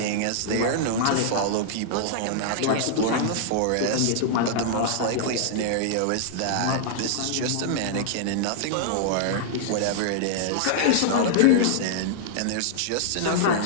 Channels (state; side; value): different; both; correlation -0.01